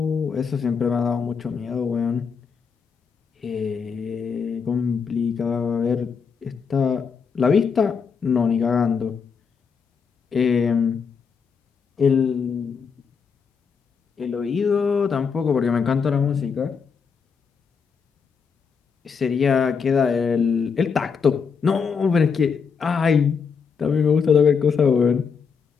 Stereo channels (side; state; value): right; quieter; 6.0 dB